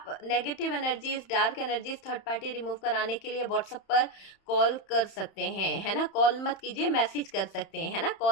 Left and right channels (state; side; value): late; right; 31 ms